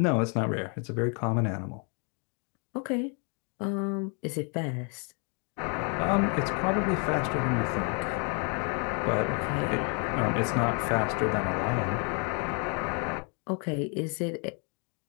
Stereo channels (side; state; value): right; quieter; 38.0 dB